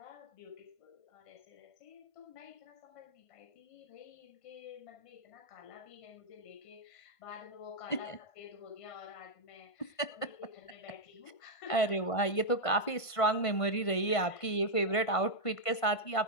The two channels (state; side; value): late; right; 1.5 ms